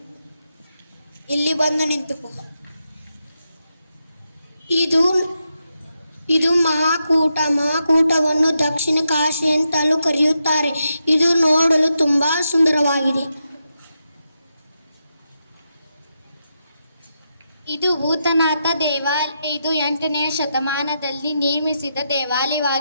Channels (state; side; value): inverted; both; correlation -0.85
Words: ಇಲ್ಲಿ ಬಂದು ನಿಂತುಕೋ. ಇದು ಮಹಾಕೂಟವನ್ನು ದಕ್ಷಿಣ ಕಾಶಿ ಅಂತಲೂ ಕರೆಯುತ್ತಾರೆ. ಇದು ನೋಡಲು ತುಂಬಾ ಸುಂದರವಾಗಿದೆ. ಇದು ಭೂತನಾಥ ದೇವಾಲಯ. ಇದು 8ನೇ ಶತಮಾನದಲ್ಲಿ ನಿರ್ಮಿಸಿದ